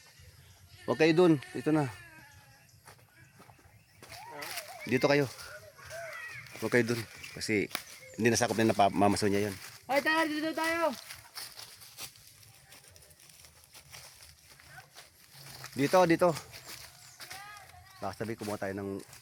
Huwag kayo doon, dito na. Dito kayo. Huwag kayo doon. Kasi, hindi nasakop na napamamaso niya yun. Ay, tara, dito tayo. Dito. Baka sabi, kumuha tayo ng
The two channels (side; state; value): both; identical; correlation 1.00